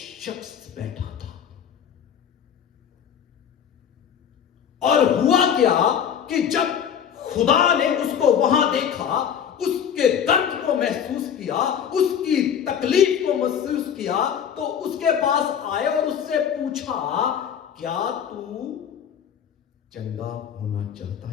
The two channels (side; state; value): right; quieter; 8.4 dB